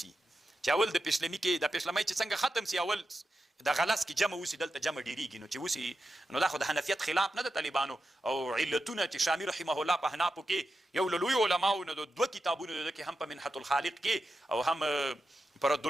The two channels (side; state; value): both; normal; correlation 0.89